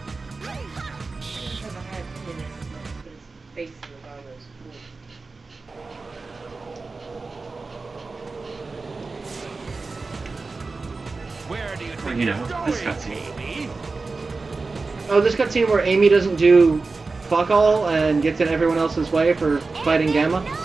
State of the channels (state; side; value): quieter; left; 3.9 dB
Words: Where do you Well, think you you're know, going, this cutscene. Amy? Oh, this cutscene where Amy doesn't do fuck all and gets in everyone else's way for fighting Gamma?